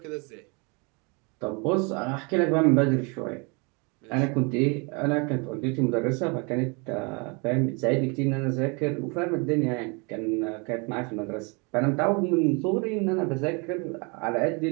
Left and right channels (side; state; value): left; quieter; 31.6 dB